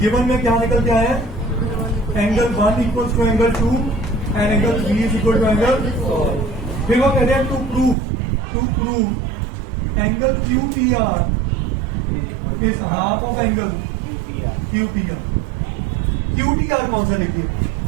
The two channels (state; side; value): drops out; left; at 8.0 s